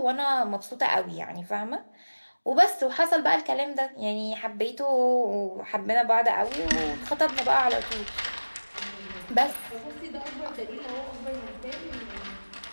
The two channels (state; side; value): inverted; both; correlation -1.00